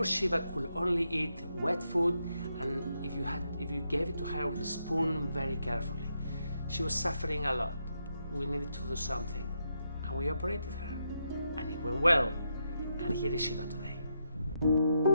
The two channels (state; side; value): inverted; both; correlation -0.81